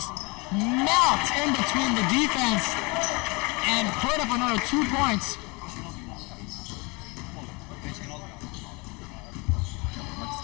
melt in between the defense and put up another 2 points. What's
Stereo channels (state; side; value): quieter; right; 27.8 dB